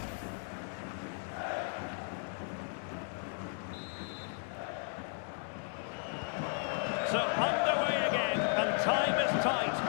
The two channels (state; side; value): silent; right; 54 dB below the other